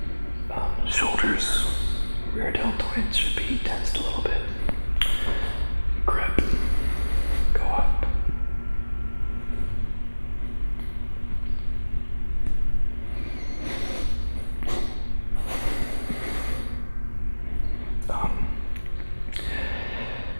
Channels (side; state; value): both; inverted; correlation -1.00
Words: shoulders, rear deltoids should be tensed a little bit. Grip, go up.